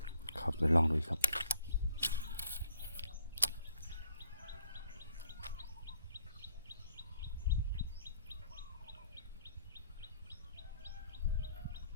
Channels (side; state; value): both; inverted; correlation -0.64